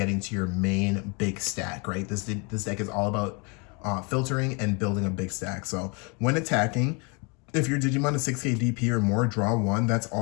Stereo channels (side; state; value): right; quieter; 32.2 dB